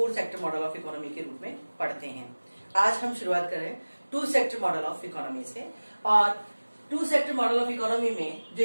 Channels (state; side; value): inverted; both; correlation -1.00